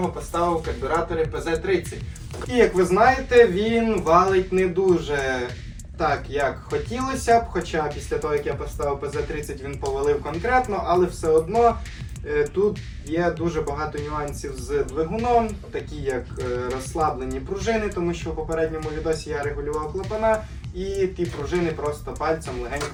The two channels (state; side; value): identical; both; correlation 1.00